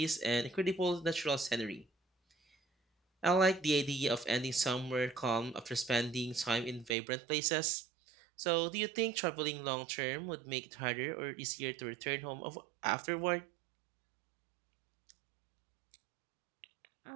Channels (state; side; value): drops out; left; at 7.0 s